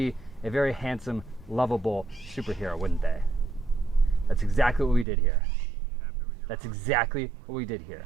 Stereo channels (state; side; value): drops out; left; at 5.1 s